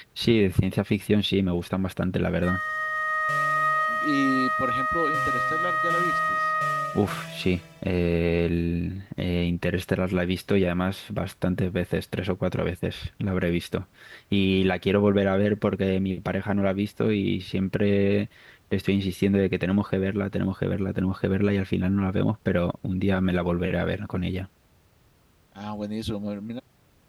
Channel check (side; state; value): both; identical; correlation 1.00